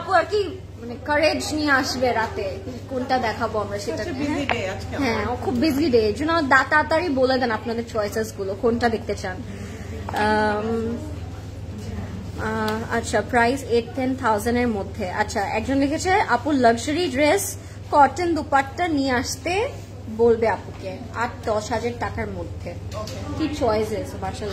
আর কি মানে কারেজ নিয়ে আসবে রাতে কোনটা দেখাবো আমরা সেটা। হ্যাঁ খুব বিজি ডে, এর জন্য তাড়াতাড়ি বলে দেন আপনাদের চয়েসেস গুলো কোনটা দেখতে চান। আচ্ছা প্রাইস 8-10,000 এর মধ্যে। আচ্ছা একজন লিখেছে আপু লাক্সারি ড্রেস কটন দুপাট্টা নিয়ে আসতে বলবে আপুকে 8-10,000 টাকার মধ্যে। কি চয়েসেস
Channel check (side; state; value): both; identical; correlation 1.00